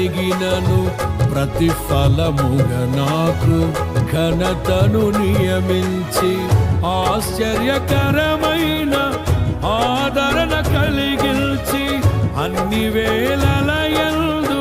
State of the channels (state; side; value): identical; both; correlation 1.00